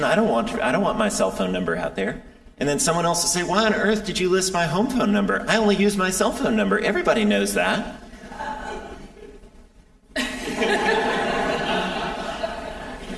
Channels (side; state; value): both; identical; correlation 1.00